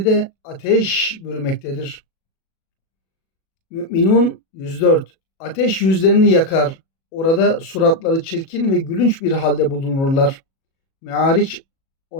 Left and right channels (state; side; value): late; right; 37 ms